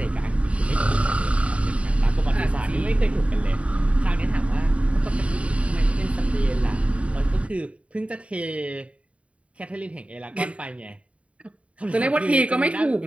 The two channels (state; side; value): late; left; 0.063 ms